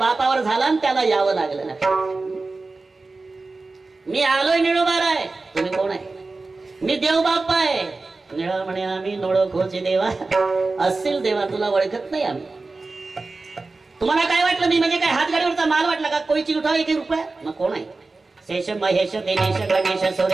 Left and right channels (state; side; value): quieter; left; 3.6 dB